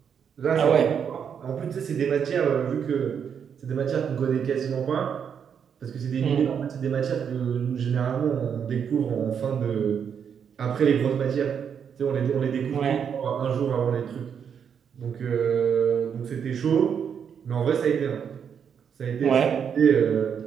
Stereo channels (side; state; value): left; quieter; 7.5 dB